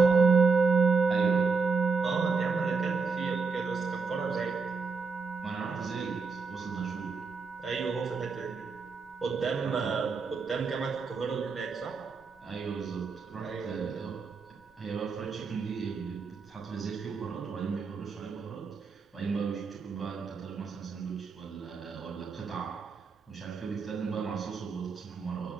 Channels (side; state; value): left; quieter; 4.8 dB